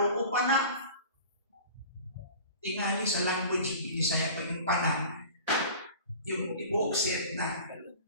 o pana. Tingali sa language yung Bisaya pa yung pana, yung ibuok set na.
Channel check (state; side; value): inverted; both; correlation -0.41